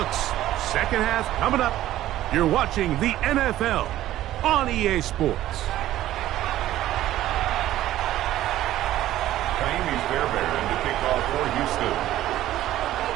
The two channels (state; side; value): quieter; left; 13.9 dB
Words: 2nd half coming up. You're watching the NFL on EA Sports. Miami's Bearbear to kick off for Houston.